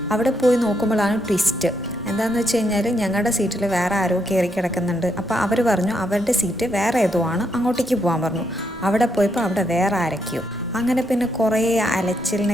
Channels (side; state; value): both; normal; correlation 0.77